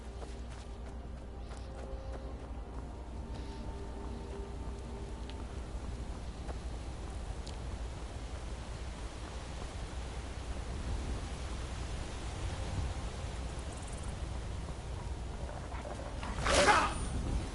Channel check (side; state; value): both; identical; correlation 1.00